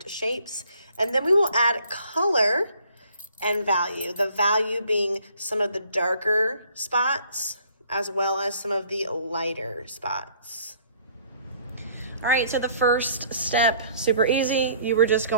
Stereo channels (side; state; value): both; inverted; correlation -0.59